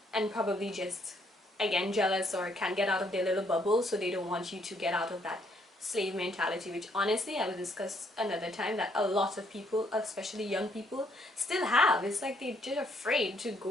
and probably just, again, jealous or can't get out of their little bubble, so they don't want you to get out of that slave mentality, which honestly I will discuss another time, that a lot of people, especially young people, still have. It's like they're just afraid to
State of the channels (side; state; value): both; normal; correlation 0.69